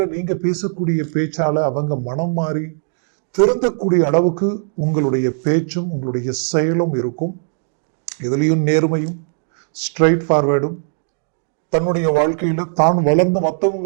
நீங்க பேசக்கூடிய பேச்சால அவங்க மனம் மாறி திருந்தக்கூடிய அளவுக்கு உங்களுடைய பேச்சும் உங்களுடைய செயலும் இருக்கும். இதுலயும் நேர்மையும் ஸ்ட்ரைட் ஃபார்வேர்டும் தன்னுடைய வாழ்க்கையில தான் வளர்ந்து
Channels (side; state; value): left; silent; 67 dB below the other